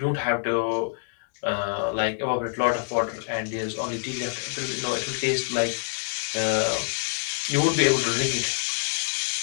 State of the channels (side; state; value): right; silent; digital silence